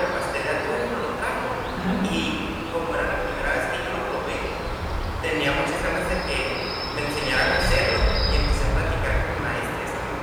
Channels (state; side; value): identical; both; correlation 1.00